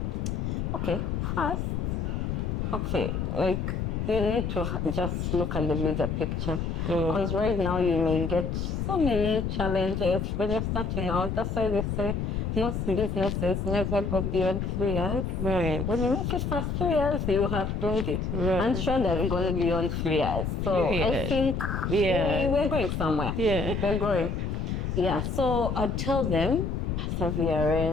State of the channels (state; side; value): noise; left; rumble, 1 dB below the sound